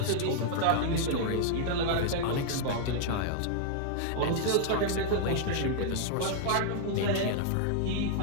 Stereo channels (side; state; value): both; different; correlation -0.01